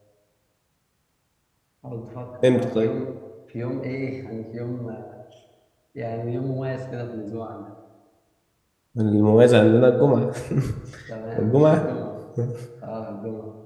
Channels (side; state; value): both; identical; correlation 1.00